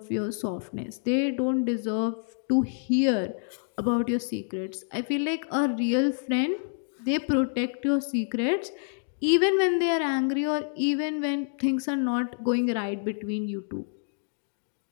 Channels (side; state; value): right; silent; digital silence